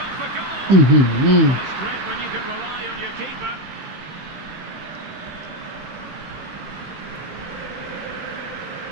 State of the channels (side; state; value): left; late; 16 ms